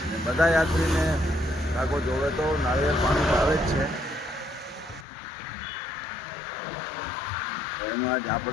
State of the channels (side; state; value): right; drops out; at 5.1 s